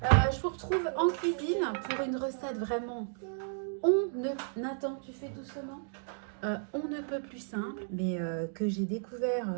Je vous retrouve en cuisine pour une recette vraiment Nathan, tu fais doucement. On ne peut plus simple, mais que j'ai découvert.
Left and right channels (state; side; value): silent; left; digital silence